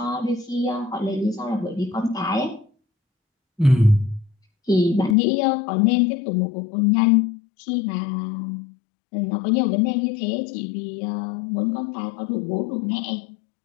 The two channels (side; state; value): right; drops out; at 5.2 s